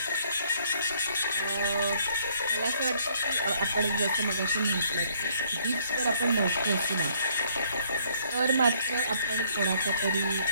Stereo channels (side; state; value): both; inverted; correlation -0.65